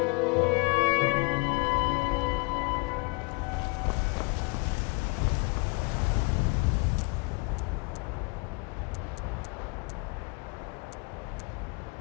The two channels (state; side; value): quieter; right; 30.4 dB